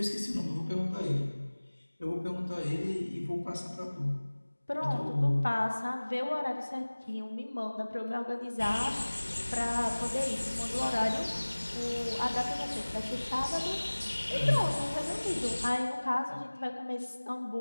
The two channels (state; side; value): inverted; both; correlation -1.00